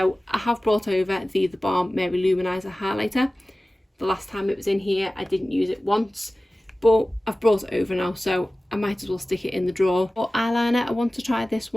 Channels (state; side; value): normal; both; correlation 0.97